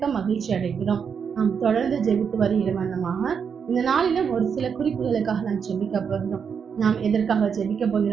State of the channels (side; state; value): left; quieter; 6.7 dB